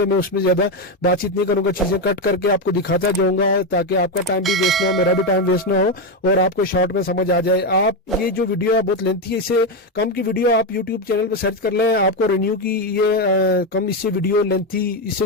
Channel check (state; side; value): normal; both; correlation 0.09